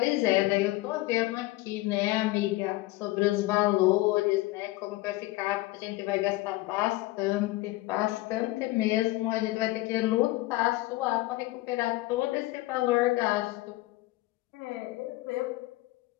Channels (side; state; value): right; quieter; 19.3 dB